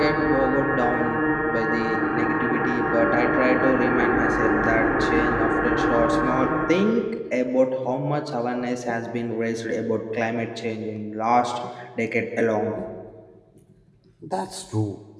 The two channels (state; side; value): identical; both; correlation 1.00